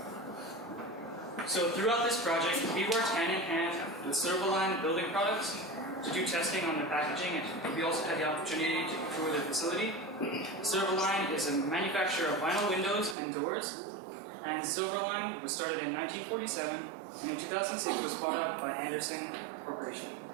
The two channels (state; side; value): drops out; left; at 13.2 s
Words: So throughout this project, we worked hand in hand with Silverline Building Products to do testing on the packaging, and we also had the opportunity to tour the facility. Silverline is a manufacturer of vinyl windows and doors, and Silverline was started in 1947, and in 2006 was bought out by Anderson Corporation.